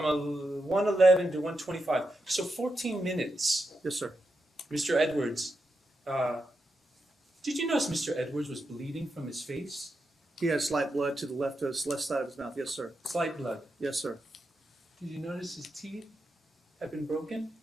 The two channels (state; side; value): normal; both; correlation 0.86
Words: a 1:11 to 1:25, so 14 minutes. Yes, sir. Mr. Edwards, did you notice Mr. Edwards was bleeding from his face? He had slight blood to the left side of his mouth. Yes, sir. Slight blood. Yes, sir. Did you notice his teeth had been broken?